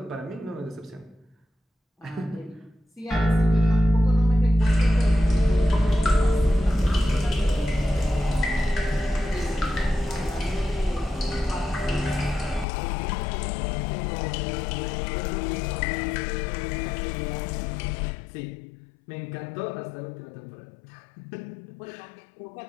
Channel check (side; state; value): right; drops out; at 12.7 s